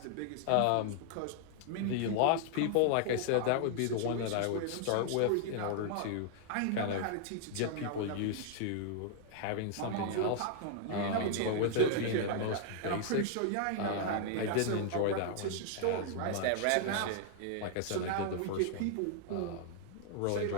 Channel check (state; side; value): different; both; correlation -0.01